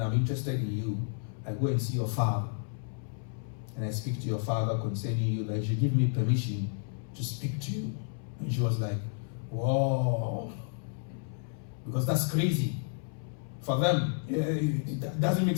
I'm interested in you, I go and see your father. And I speak to your father concerning you, that you should give me permission to speak to you. And she was like, whoa. Because that's crazy. For them, it doesn't make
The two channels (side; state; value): right; silent; 57 dB below the other